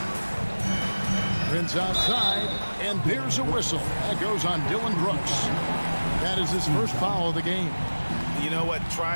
Prince outside, and there's a whistle. That goes on Dylan Brooks. That is his first foul of the game. You know what?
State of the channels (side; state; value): both; inverted; correlation -1.00